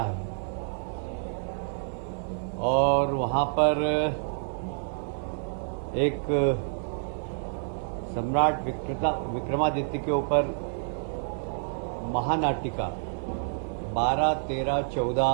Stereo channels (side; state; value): left; silent; digital silence